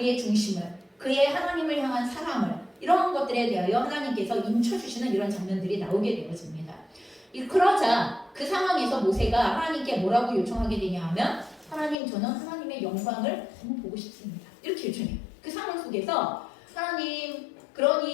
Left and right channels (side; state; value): right; drops out; at 12.0 s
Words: 중심을, 그의 하나님을 향한 사랑을, 이런 것들에 대하여 하나님께서 인쳐주시는 이런 장면들이 나오게 되어집니다. 그러자 그 상황에서 모세가 하나님께 뭐라고 요청하게 되냐 하면, 하나님, 저는 하나님의 영광을 너무 보고 싶습니다, 이렇게 요청해요. 그 상황 속에서 하나님,